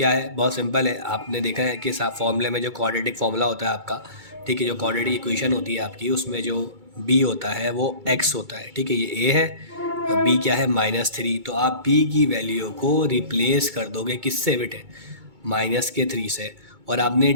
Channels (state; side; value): late; left; 2.2 ms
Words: है? बहुत सिंपल है, आपने देखा है कि फॉर्मूले में जो क्वाड्रेटिक फॉर्मूला होता है आपका, ठीक है, जो क्वाड्रेटिक इक्वेशन होती है आपकी, उसमें जो b होता है वो x होता है। ठीक है, ये a है, b क्या है? -3। तो आप b की वैल्यू को रिप्लेस कर दोगे किससे बेटे? -3 से। और आपने